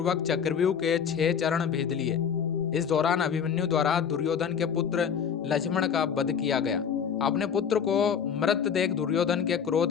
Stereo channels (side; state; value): right; quieter; 7.4 dB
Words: चक्रव्यूह के 6 चरण भेद लिए। इस दौरान अभिमन्यु द्वारा दुर्योधन के पुत्र लक्ष्मण का वध किया गया। अपने पुत्र को मृत देख दुर्योधन के